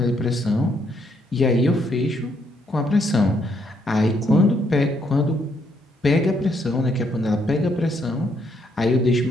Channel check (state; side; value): normal; both; correlation 0.73